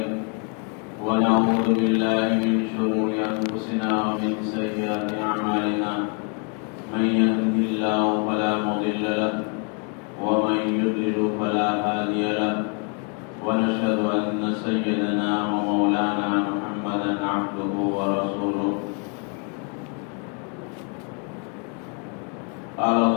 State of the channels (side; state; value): right; quieter; 37.9 dB